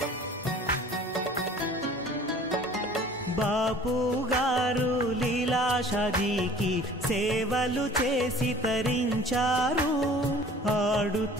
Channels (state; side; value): normal; both; correlation 0.48